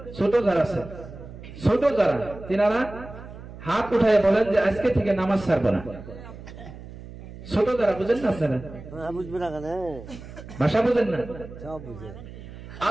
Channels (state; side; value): noise; right; hum, 14 dB below the sound